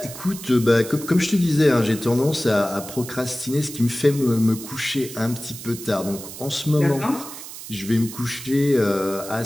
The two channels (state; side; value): noise; right; hiss, 12 dB below the sound